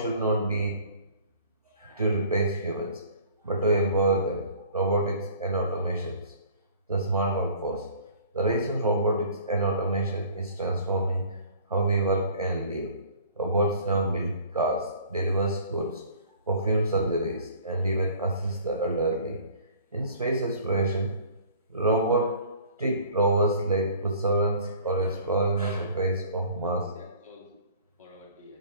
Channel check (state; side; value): inverted; both; correlation -0.50